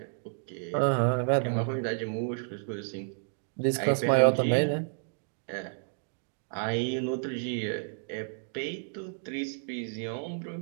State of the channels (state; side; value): silent; left; digital silence